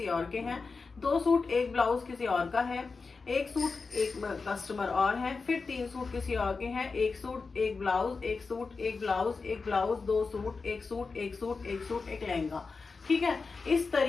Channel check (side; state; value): right; quieter; 4.4 dB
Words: और के हैं, 2 सूट एक ब्लाउज किसी और का है, 1 सूट एक कस्टमर और है, फिर 3 सूट किसी और के हैं, 1 सूट एक ब्लाउज, 1 सूट एक blouse, 1 blouse, 2 suit, 1 suit, 1 suit, 1 suit, एक लहंगा, ठीक है। इस